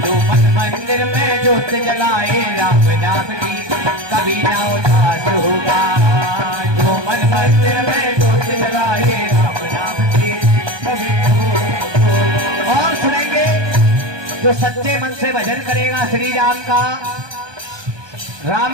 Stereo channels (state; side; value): late; left; 1.2 ms